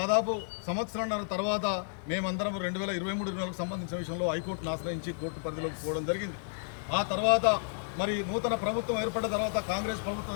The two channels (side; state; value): right; silent; digital silence